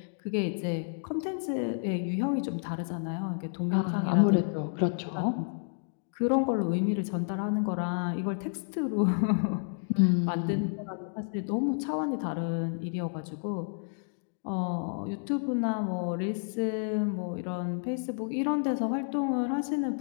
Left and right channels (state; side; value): silent; right; digital silence